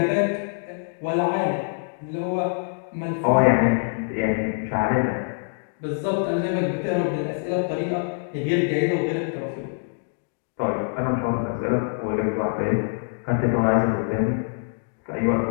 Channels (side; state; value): right; silent; digital silence